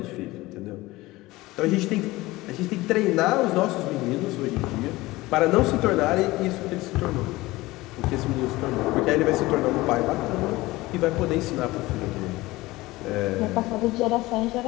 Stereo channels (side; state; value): right; quieter; 19.6 dB